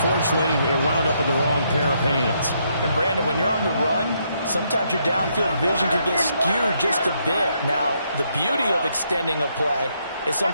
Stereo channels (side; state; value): both; inverted; correlation -0.75